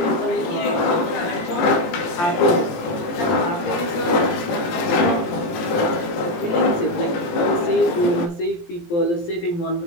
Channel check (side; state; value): right; late; 18 ms